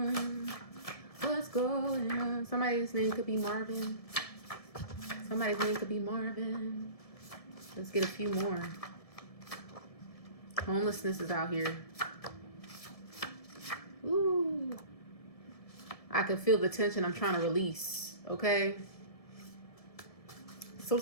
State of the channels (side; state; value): right; late; 1.7 ms